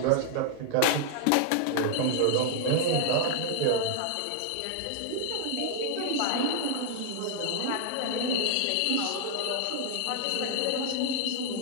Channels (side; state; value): both; different; correlation -0.01